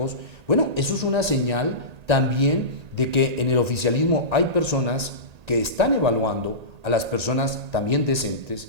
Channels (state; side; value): late; left; 1.8 ms